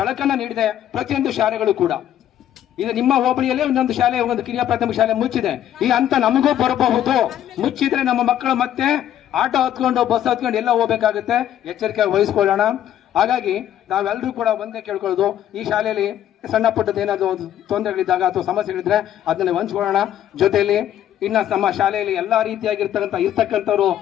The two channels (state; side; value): quieter; right; 11.2 dB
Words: ನೀಡಿದೆ ಪ್ರತಿಯೊಂದು ಶಾಲೆಗಳು ಕೂಡ. ಇದು ನಿಮ್ಮ ಹೋಬಳಿಯಲ್ಲೇ ಒಂದೊಂದು ಶಾಲೆ, ಒಂದು ಕಿರಿಯ ಪ್ರಾಥಮಿಕ ಶಾಲೆ ಮುಚ್ಚಿದೆ. ಈ ಹಂತ ನಮಗೂ ಬರಬಹುದು. ಮುಚ್ಚಿದ್ರೆ ನಮ್ಮ ಮಕ್ಕಳು ಮತ್ತೆ ಆಟೋ ಹತ್ಕೊಂಡು ಬಸ್ ಹತ್ಕೊಂಡು ಎಲ್ಲ ಹೋಗ್ಬೇಕಾಗುತ್ತೆ. ಎಚ್ಚರಿಕೆ ವಹಿಸ್ಕೊಳ್ಳೋಣ. ಹಾಗಾಗಿ ನಾವೆಲ್ಲರೂ ಕೂಡ ಒಂದೇ ಕೇಳ್ಕೊಳ್ಳೋದು, ಈ ಶಾಲೆಯಲ್ಲಿ ಸಣ್ಣ ಪುಟ್ಟದ ಏನಾದ್ರು ತೊಂದರೆಗಳಿದ್ದಾಗ ಅಥವಾ ಸಮಸ್ಯೆಗಳಿದ್ರೆ ಅದನ್ನ ಹಂಚ್ಕೊಳ್ಳೋಣ. ಜೊತೆಯಲ್ಲಿ ಇನ್ನ ನಮ್ಮ ಶಾಲೆಯಲ್ಲಿ ಎಲ್ಲಾ ಇರ್ತಕ್ಕಂಥವ್ರು